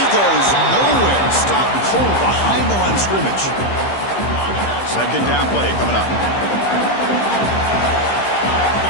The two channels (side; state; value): right; late; 15 ms